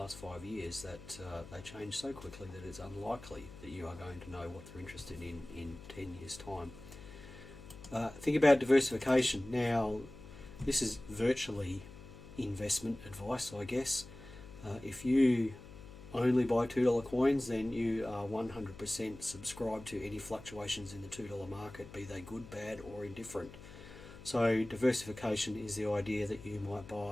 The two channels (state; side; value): noise; left; hum, 16 dB below the sound